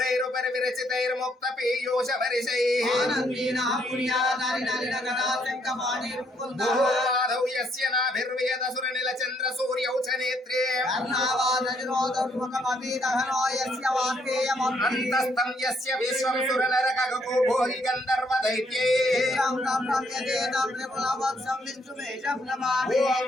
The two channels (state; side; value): normal; both; correlation 0.71